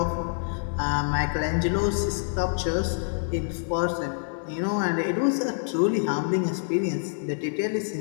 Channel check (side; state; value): right; silent; digital silence